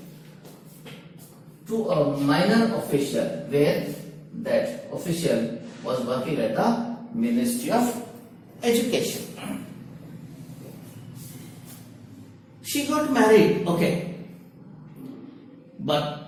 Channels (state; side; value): identical; both; correlation 1.00